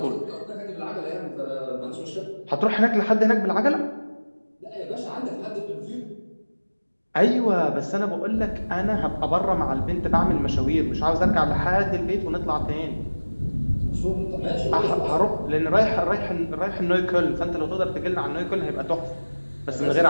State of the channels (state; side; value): inverted; both; correlation -1.00